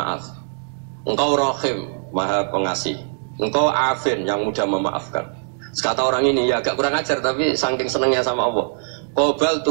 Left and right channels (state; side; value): silent; left; digital silence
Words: Engkau rahim, maha pengasih. Engkau afin, yang mudah memaafkan. Kata orang ini ya agak kurang ajar, tapi saking senengnya sama Allah. Qobal